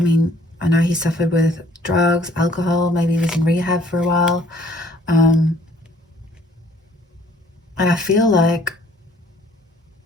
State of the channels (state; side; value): normal; both; correlation 0.59